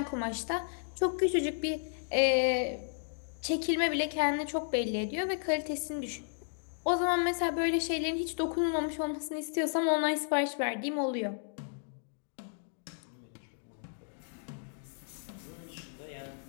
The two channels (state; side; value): silent; right; digital silence